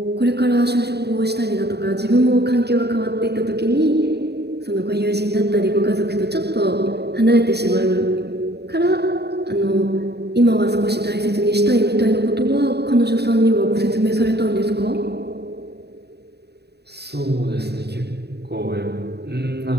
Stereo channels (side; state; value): left; late; 0.48 ms